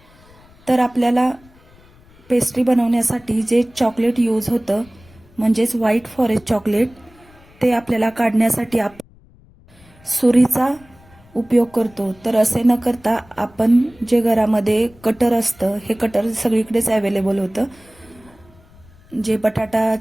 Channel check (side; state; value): left; noise; rumble, 27 dB below the sound